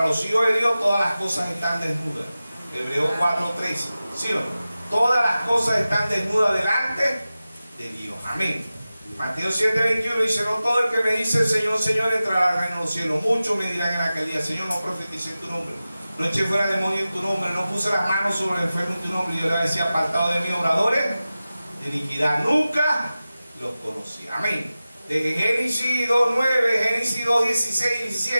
los hijos de Dios todas las cosas están desnudas. Hebreos 4:13. ¿Sí o no? Todas las cosas están desnudas delante de Dios. Amén. Mateo 7:21 dice: no todo el que me dice Señor, Señor entrará al reino de los cielos. Muchos me dirán en aquel día: Señor, no profeticé en tu nombre, no eché fuera demonios en tu nombre, no puse las manos sobre el enfermo en tu nombre. Y yo le decía: apartado de mí, obradores de iniquidad, nunca los conocí. Amén. De Génesis 2:9, Génesis 2:16 y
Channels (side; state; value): both; inverted; correlation -0.95